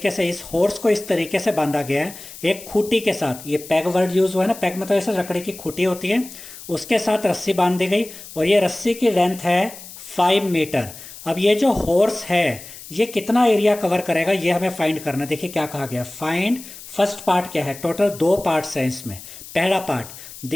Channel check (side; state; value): left; noise; hiss, 15 dB below the sound